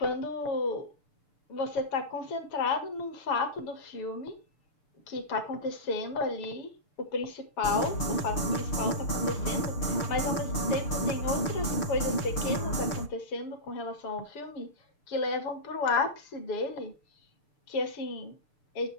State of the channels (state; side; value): late; right; 6.7 ms